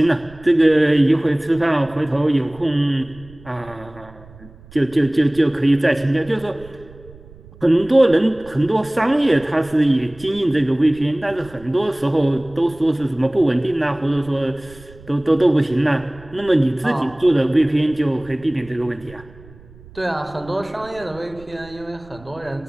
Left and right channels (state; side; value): noise; right; rumble, 22 dB below the sound